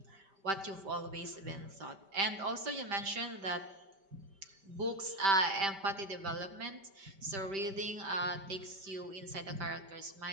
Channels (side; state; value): left; late; 5.1 ms